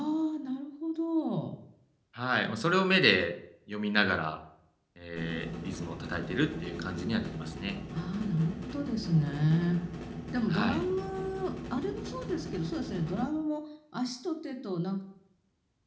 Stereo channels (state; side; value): identical; both; correlation 1.00